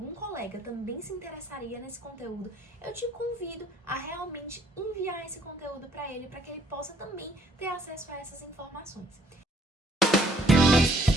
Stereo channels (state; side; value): normal; both; correlation 0.63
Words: colega também se interessaria nesse conteúdo, eu te convido a realmente enviar esse conteúdo para ele, para que ele possa também ter acesso a essas informações.